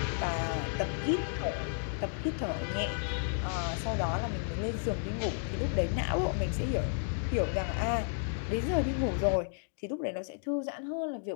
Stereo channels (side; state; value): right; silent; digital silence